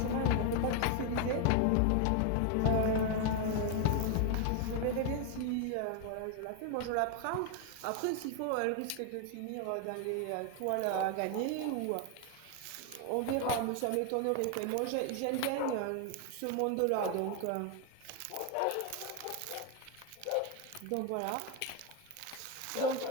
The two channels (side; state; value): both; different; correlation 0.01